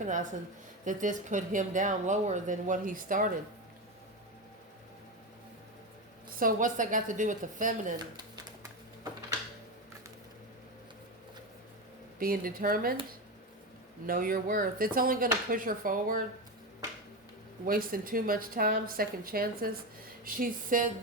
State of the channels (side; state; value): both; normal; correlation 0.16